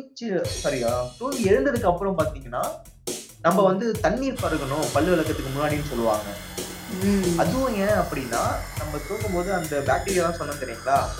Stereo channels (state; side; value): identical; both; correlation 1.00